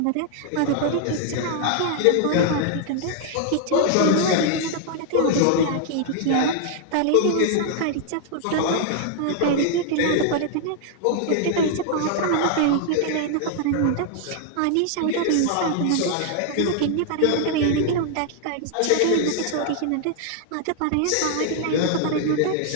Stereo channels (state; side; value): different; both; correlation 0.00